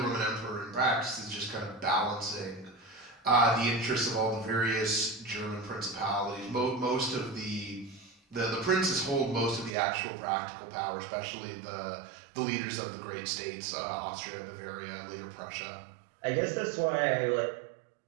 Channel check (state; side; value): drops out; left; at 9.8 s